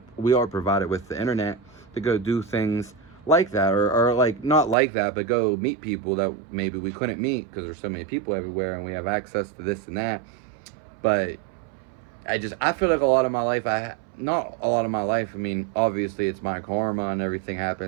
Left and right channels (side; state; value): left; drops out; at 4.8 s